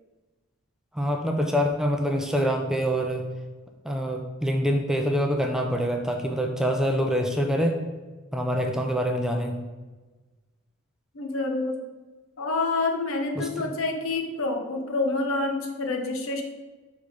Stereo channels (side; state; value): both; normal; correlation 0.51